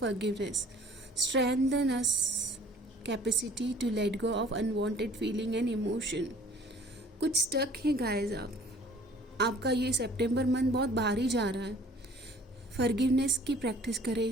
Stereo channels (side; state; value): both; normal; correlation 0.52